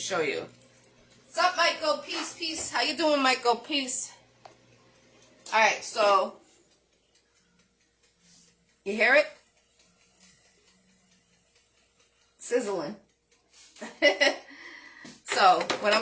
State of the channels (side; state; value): both; identical; correlation 1.00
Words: you. What's up, Michael? Peace, peace. How you doing, Michael? Peace. All right, so you hear it? Sizzling. So what I'm